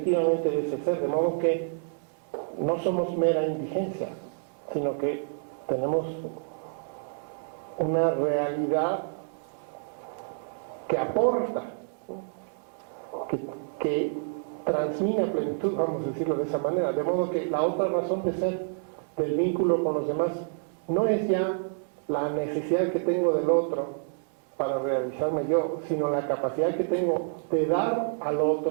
de ese ser, de modo que no somos mera indigencia, sino que tenemos una realidad que aporta, que transmite plenitud, vamos a decirlo de esa manera, de modo que la otra razón de ser del vínculo con los demás no es ya la necesidad que tengo del otro para realizarme yo, sino la capacidad que tengo de dar al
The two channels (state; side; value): silent; left; 59 dB below the other